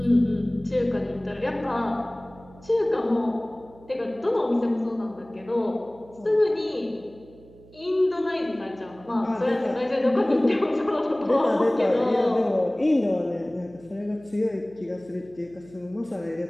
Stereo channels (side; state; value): right; noise; hum, 23 dB below the sound